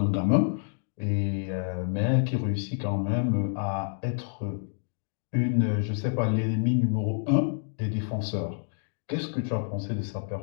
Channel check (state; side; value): silent; right; digital silence